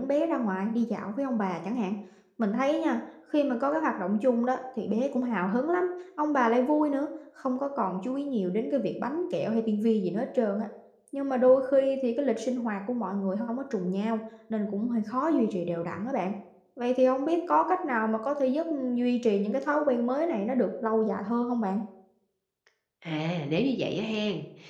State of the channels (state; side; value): identical; both; correlation 1.00